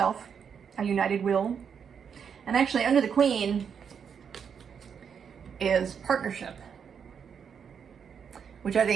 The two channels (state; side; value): quieter; left; 7.1 dB